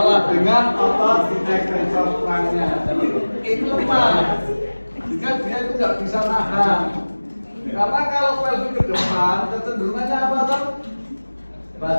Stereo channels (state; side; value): inverted; both; correlation -1.00